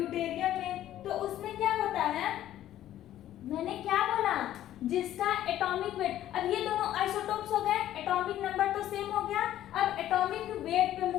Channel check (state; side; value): quieter; right; 12.6 dB